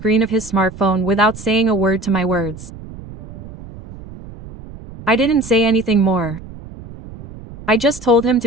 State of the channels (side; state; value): right; noise; rumble, 16 dB below the sound